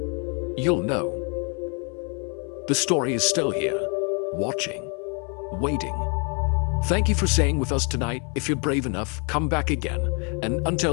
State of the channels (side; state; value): right; quieter; 36.7 dB